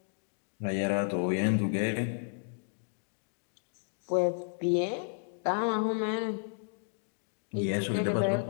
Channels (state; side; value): silent; right; digital silence